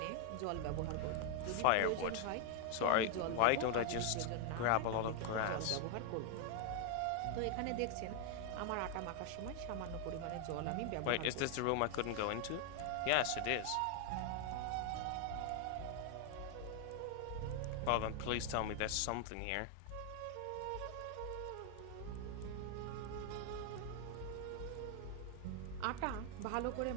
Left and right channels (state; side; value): different; both; correlation 0.00